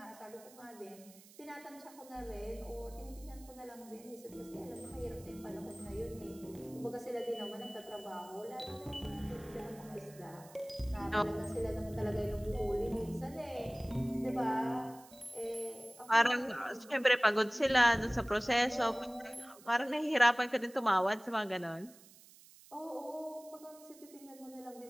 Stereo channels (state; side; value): noise; right; hiss, 22 dB below the sound